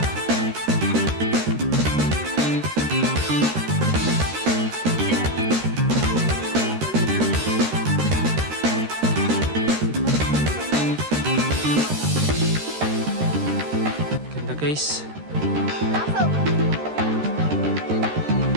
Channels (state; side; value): late; left; 13 ms